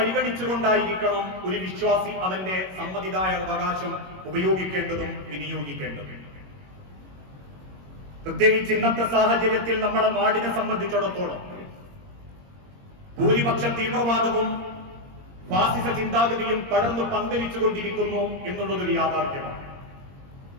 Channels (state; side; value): late; left; 21 ms